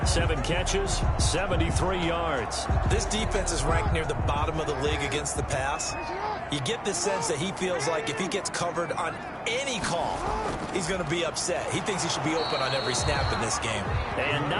7 catches, 73 yards. This defense is ranked near the bottom of the league against the pass. You get the sense that he feels like if he gets covered on any call, he's going to be upset. He thinks he should be open on every snap in this game. And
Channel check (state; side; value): identical; both; correlation 1.00